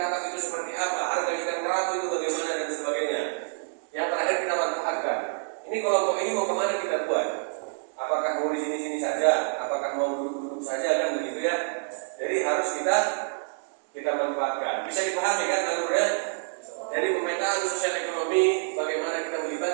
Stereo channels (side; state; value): left; silent; digital silence